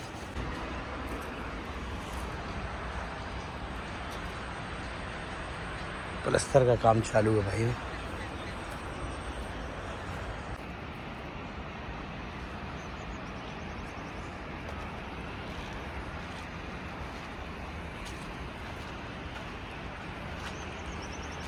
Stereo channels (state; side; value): identical; both; correlation 1.00